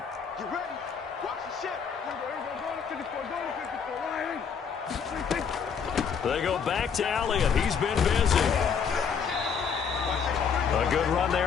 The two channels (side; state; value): right; quieter; 6.6 dB